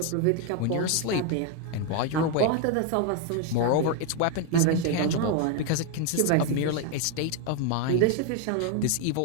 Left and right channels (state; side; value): different; both; correlation 0.01